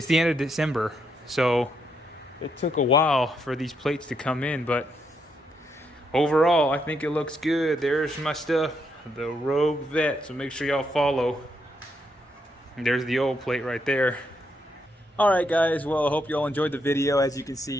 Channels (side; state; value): both; normal; correlation 0.78